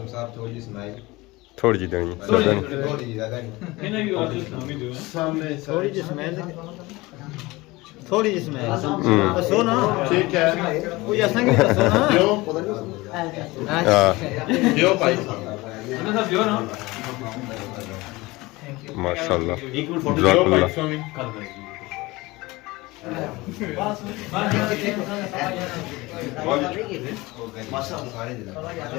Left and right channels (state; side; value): quieter; right; 21.5 dB